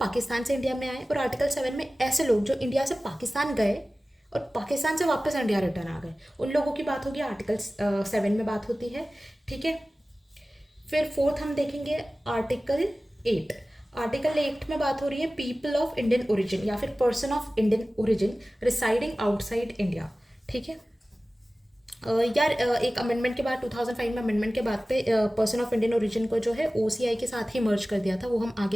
से इंडिया में आए, और आर्टिकल 7 में ऐसे लोग जो इंडिया से पाकिस्तान गए और पाकिस्तान से वापस इंडिया रिटर्न आ गए, उन लोगों की बात होगी आर्टिकल 7 में बात होती है। ठीक है, फिर फोर्थ हम देखेंगे आर्टिकल 8। आर्टिकल 8 में बात हो रही है पीपल ऑफ इंडियन ओरिजिन या फिर person of Indian origin residing outside India. ठीक है, यार एक अमेंडमेंट के बाद 2005 में अमेंडमेंट के बाद पे पर्सन ऑफ इंडियन ओरिजिन को जो है ओसीआई के साथ ही मर्ज कर दिया था, वो हम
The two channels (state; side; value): normal; both; correlation 0.97